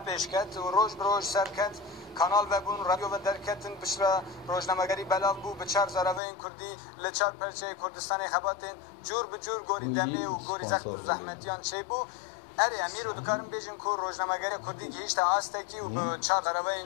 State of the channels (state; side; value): drops out; right; at 6.2 s